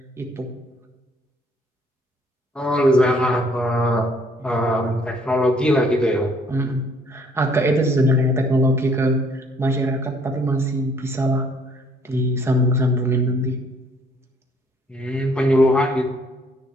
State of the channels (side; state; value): both; normal; correlation 0.62